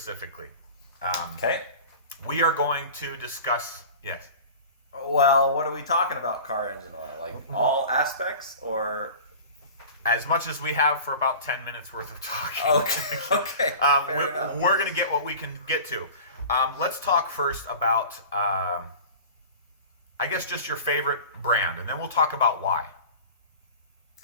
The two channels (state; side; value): inverted; both; correlation -0.38